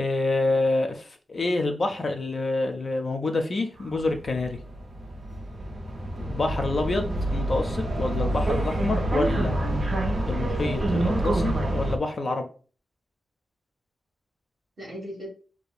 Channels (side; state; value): both; normal; correlation 0.88